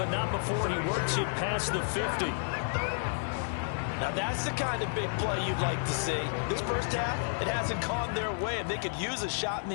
not before he works it past the 50. Now that's the kind of big play you'd like to see. This first half, it hasn't gone their way, and they could use a shot in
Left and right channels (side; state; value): right; silent; digital silence